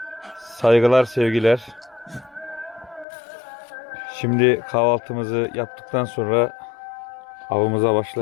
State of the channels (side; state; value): right; drops out; at 3.1 s